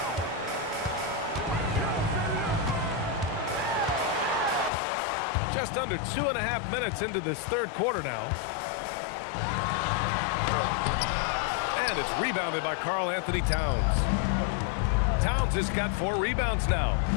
Just under 2.5 minutes into this third quarter now. And it's rebounded by Karl-Anthony Towns. Towns has got 4 rebounds now.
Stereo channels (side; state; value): right; drops out; at 4.7 s